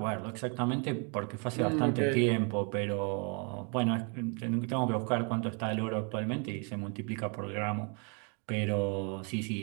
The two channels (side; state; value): left; quieter; 37.1 dB